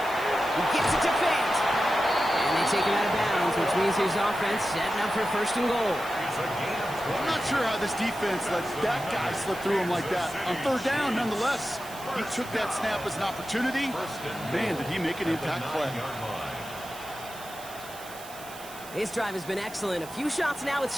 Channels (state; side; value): noise; right; hiss, 16 dB below the sound